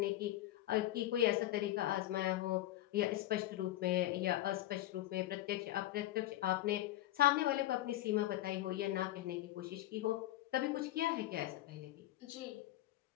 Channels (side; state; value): right; quieter; 14.9 dB